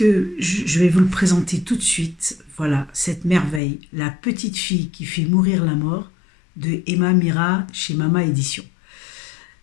je vais vous le présenter tout de suite. Voilà, cette merveille, La petite fille qui fait mourir la mort, de Emma Mira chez Mama Édition.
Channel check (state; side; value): drops out; right; at 3.6 s